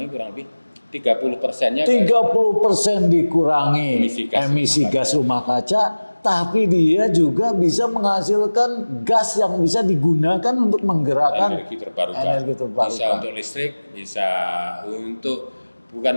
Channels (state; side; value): inverted; both; correlation -1.00